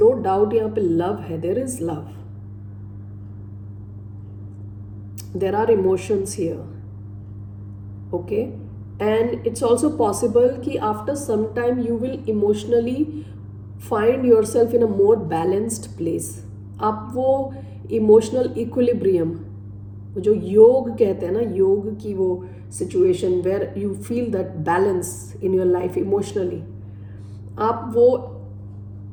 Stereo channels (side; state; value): both; identical; correlation 1.00